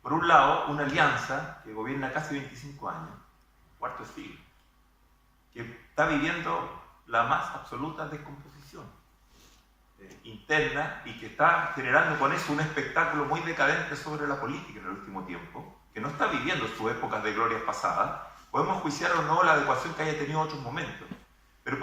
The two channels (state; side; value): identical; both; correlation 1.00